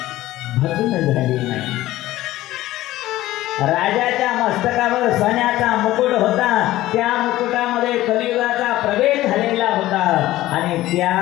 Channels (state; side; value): quieter; right; 15.9 dB